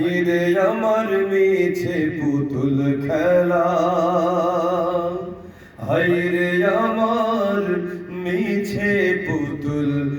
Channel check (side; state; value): both; identical; correlation 1.00